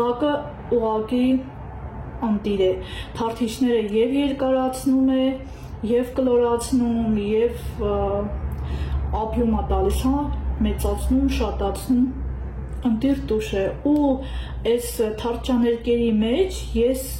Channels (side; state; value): both; identical; correlation 1.00